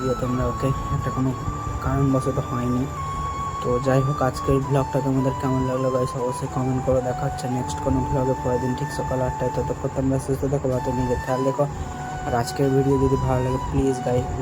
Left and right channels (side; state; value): both; identical; correlation 1.00